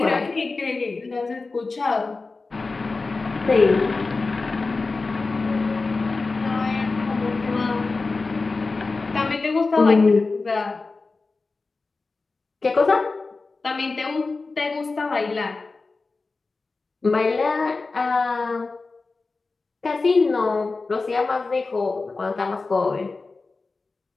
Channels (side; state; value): right; quieter; 3.8 dB